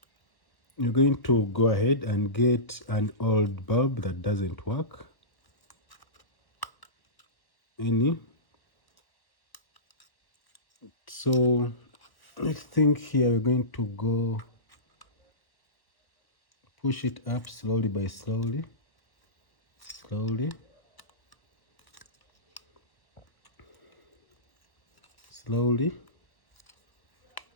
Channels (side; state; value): right; late; 1.1 ms